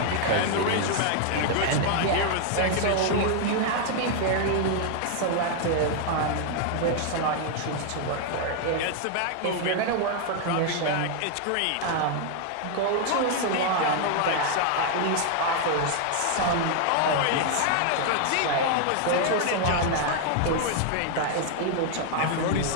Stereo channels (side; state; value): both; different; correlation 0.00